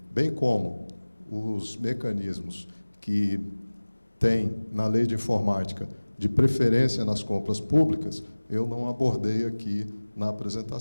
bem como os mecanismos que tem na Lei de Informática de preferência nas compras públicas, eu não abordei aqui na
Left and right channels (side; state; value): both; inverted; correlation -1.00